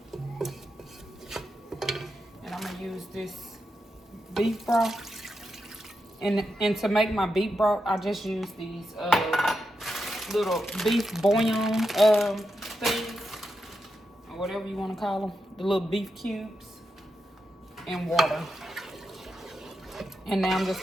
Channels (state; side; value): normal; both; correlation 0.87